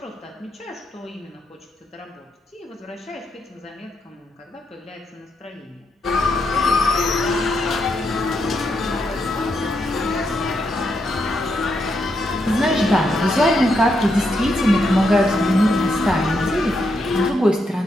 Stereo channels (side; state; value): both; normal; correlation 0.81